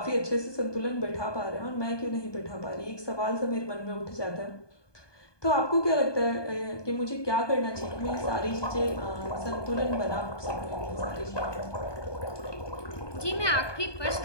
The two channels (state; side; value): late; right; 1.2 ms